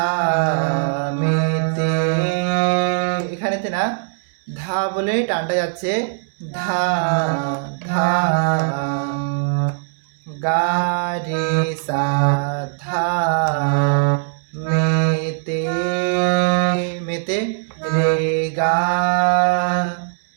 এখানেতে না ধা বলে টানটা যাচ্ছে, ধা ধা গা রে সা ধা, মেতে মেতে রে গা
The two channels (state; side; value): silent; left; digital silence